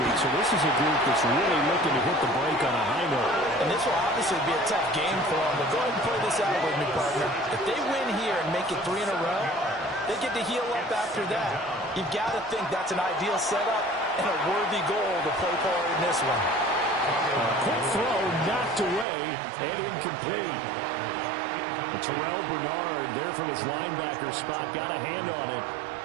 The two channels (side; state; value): left; drops out; at 19.1 s